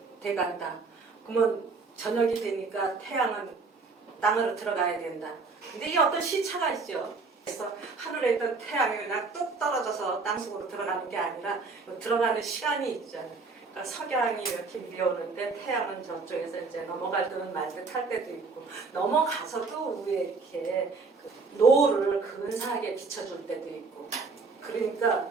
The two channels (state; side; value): quieter; left; 4.3 dB